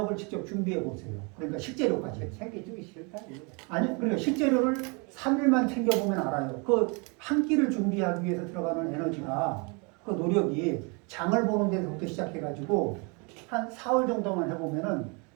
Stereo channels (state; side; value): quieter; left; 32.1 dB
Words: 직접 준비해 보세요. 그러니까 식재료까지. 챙겨주기 싫다 이거. 아니, 그러니까 식재료를 3일만 챙겨보면 알아요. 그 한 끼를 준비하기 위해서 들어가는 에너지가, 그 노력이 장을 보는 데서부터 시작해가지고 한 4월 정도만 해보면은